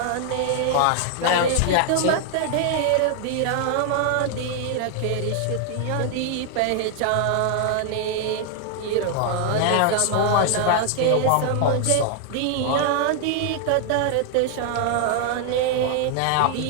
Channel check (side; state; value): both; different; correlation 0.00